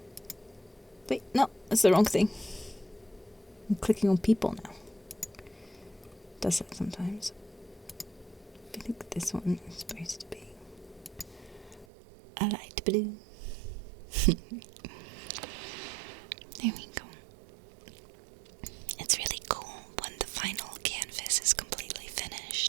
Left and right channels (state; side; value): drops out; left; at 11.9 s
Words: Wait, no, that's the wrong thing. I'm clicking on people now. Does that sometimes. I think this one is supposed to be a light blue. There we go. It's really cool when the final canvas is completely